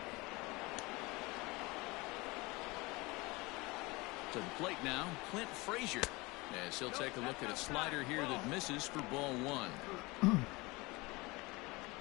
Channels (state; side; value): quieter; right; 24.0 dB